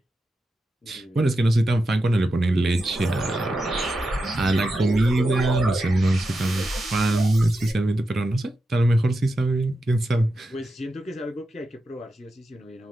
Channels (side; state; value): both; normal; correlation 0.89